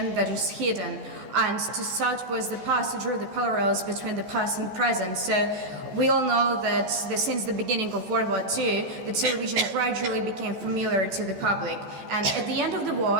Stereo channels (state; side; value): late; left; 14 ms